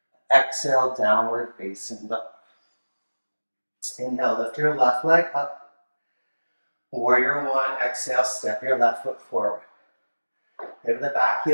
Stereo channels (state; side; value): inverted; both; correlation -1.00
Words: Exhale, downward facing dog. Inhale, lift your left leg up. Warrior one, exhale, step your left foot forward. Pivot the back